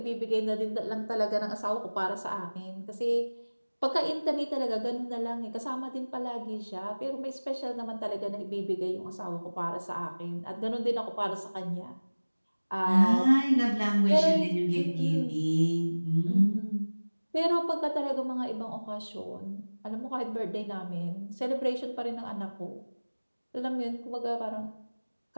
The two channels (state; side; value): inverted; both; correlation -1.00